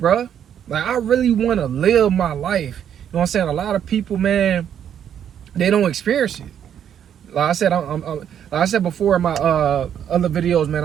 Like, I really want to live my life. You know what I'm saying? A lot of people, man, they don't experience it. Like I said, like I said before in my other videos, man,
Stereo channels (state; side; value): quieter; left; 9.2 dB